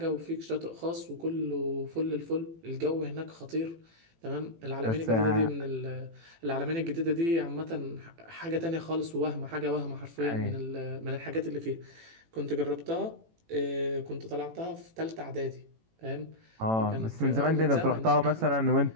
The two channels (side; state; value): left; late; 18 ms